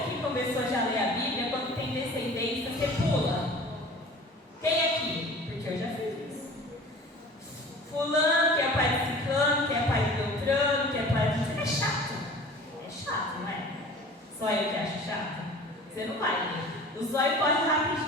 começou já a ler a Bíblia, quando tem descendência, você pula? Quem aqui? Porque eu já fiz isso. Fulano, que é pai de ciclano, que é pai de Beltrano, que é pai de... É chato. É chato, não é? Só eu que acho chato. Você não vai ler. O zóio corre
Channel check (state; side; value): normal; both; correlation 0.43